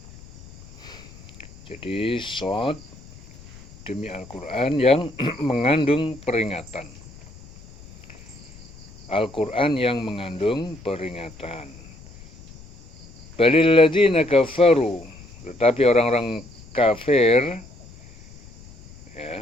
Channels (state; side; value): noise; left; rumble, 20 dB below the sound